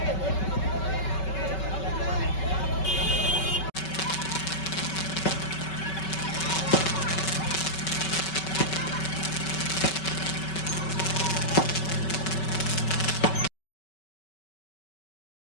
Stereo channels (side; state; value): right; late; 5.3 ms